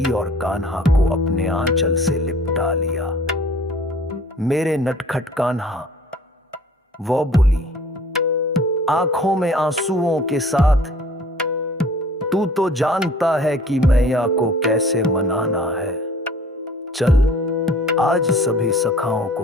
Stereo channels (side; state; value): both; normal; correlation 0.51